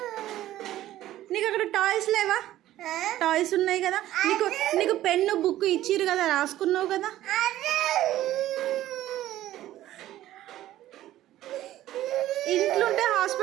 నీకు అక్కడ టాయ్స్ లేవా? టాయ్స్ ఉన్నాయి కదా. నీకు పెన్ను బుక్ ఇచ్చిరు కదా, రాసుకున్నావు కదా. ఇంట్లో ఉంటే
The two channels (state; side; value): quieter; left; 14.0 dB